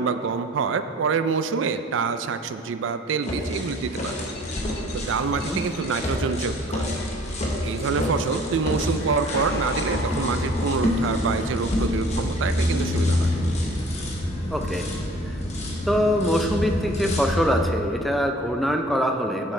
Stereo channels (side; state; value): both; normal; correlation 0.51